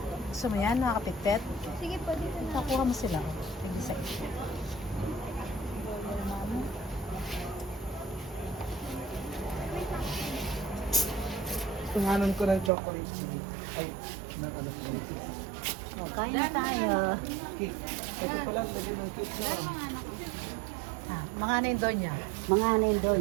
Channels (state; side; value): drops out; left; at 12.7 s